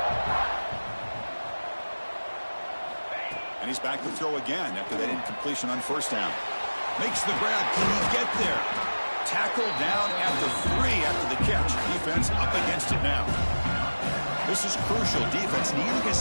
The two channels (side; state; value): both; inverted; correlation -1.00